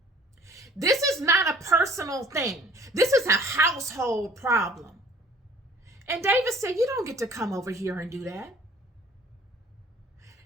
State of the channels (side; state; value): both; normal; correlation 0.52